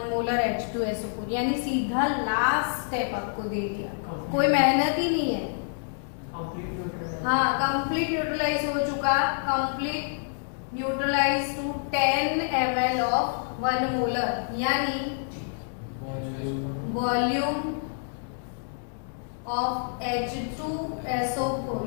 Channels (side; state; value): right; silent; digital silence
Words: molar H2SO4, यानी सीधा लास्ट स्टेप आपको दे दिया। कोई मेहनत ही नहीं है। हाँ, कंप्लीट न्यूट्रलाइज हो चुका, complete neutralise to 10 ml of 1 molar, यानी volume of H2SO4